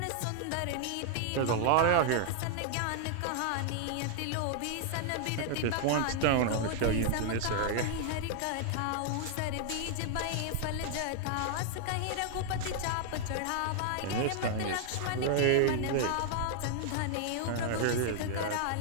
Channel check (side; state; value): both; different; correlation 0.00